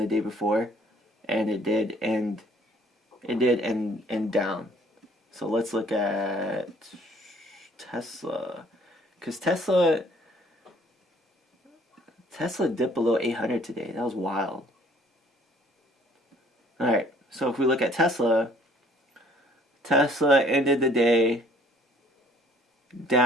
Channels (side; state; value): both; normal; correlation 0.58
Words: day before, and it did end down. So let's look at Tesla, because Tesla dipped below 800 today. That was wild. All right, so if we look at Tesla ended the day